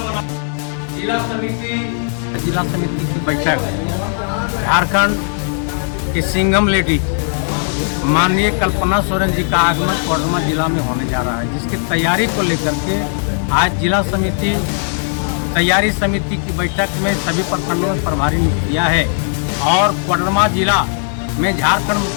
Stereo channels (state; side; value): silent; right; 68 dB below the other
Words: जिला समिति की बैठक झारखंड की सिंघम लेडी माननीय कल्पना सोरेन जी का आगमन कोडरमा जिला में होने जा रहा है, जिसकी तैयारी को लेकर के आज जिला समिति तैयारी समिति की बैठक में सभी प्रखंडों में प्रभारी नियुक्त किया है और कोडरमा जिला में झारखंड